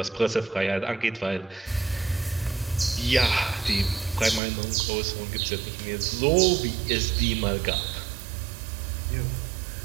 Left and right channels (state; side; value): drops out; left; at 4.4 s